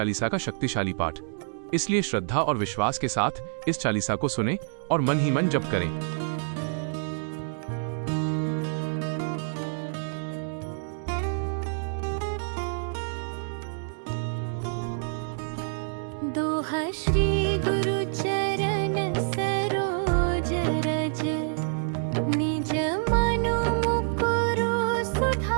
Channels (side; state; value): left; silent; digital silence